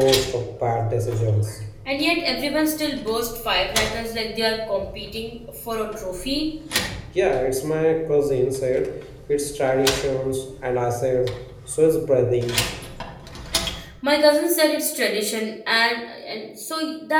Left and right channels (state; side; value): identical; both; correlation 1.00